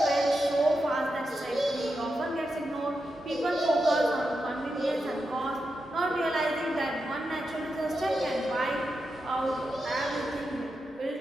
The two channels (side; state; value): both; normal; correlation 0.88